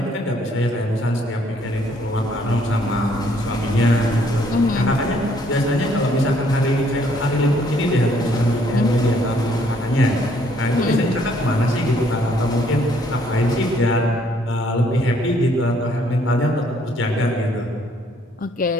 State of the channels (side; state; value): both; normal; correlation 0.65